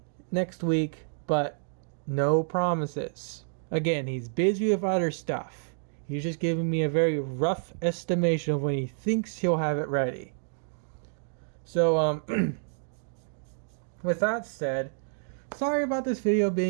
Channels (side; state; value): left; silent; digital silence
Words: next week, but no promises. Again, he's busy with other stuff. He's just giving me a very rough estimation of when he thinks he'll have it ready. So, with that said, sorry about this video